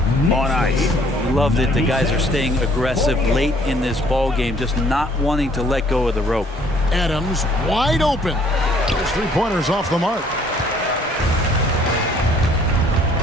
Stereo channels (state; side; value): normal; both; correlation 0.60